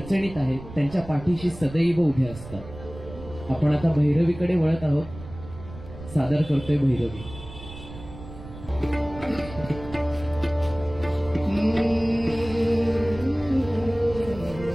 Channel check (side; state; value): right; noise; rumble, 15 dB below the sound